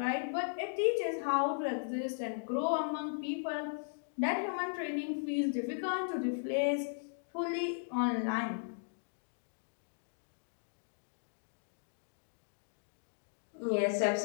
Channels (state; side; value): silent; right; digital silence